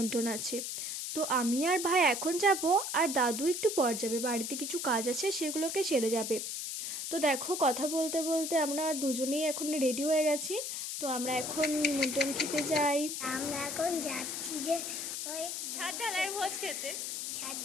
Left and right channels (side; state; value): left; noise; hiss, 4 dB below the sound